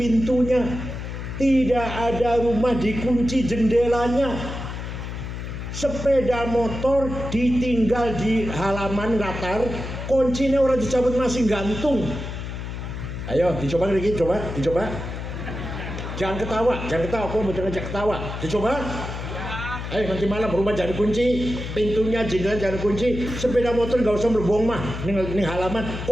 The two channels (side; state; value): left; noise; hum, 7 dB below the sound